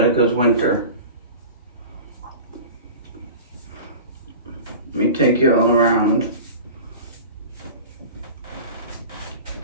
Wynter. Let me take you all around.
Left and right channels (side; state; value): both; inverted; correlation -0.36